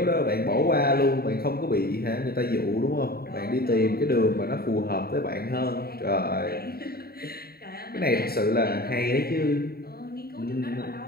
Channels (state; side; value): late; right; 0.45 ms